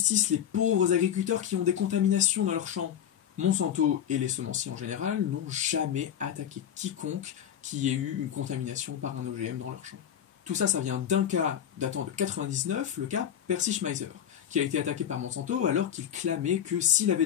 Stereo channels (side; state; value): right; quieter; 9.7 dB